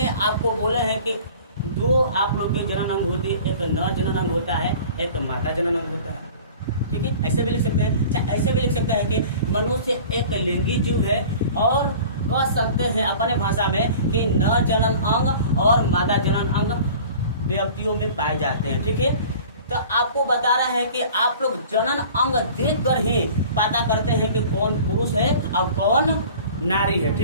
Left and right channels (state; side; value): inverted; both; correlation -0.44